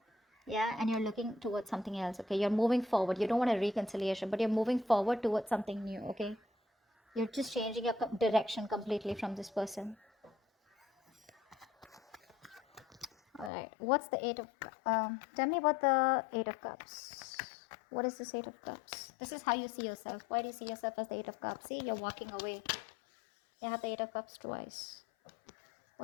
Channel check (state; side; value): drops out; right; at 13.5 s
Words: Yeah, and you're looking towards something else. Okay, you're moving forward. You don't want a reconciliation, but you're moving forward towards something new. Okay, you're just changing your direction completely from this person. All right, what's the Eight of tell me about the Eight of Cups. What is this Eight of Cups? This is how you see yourself. Why do you see yourself as the Eight of Cups? See, you're walking away. You have the Eight of Cups twice.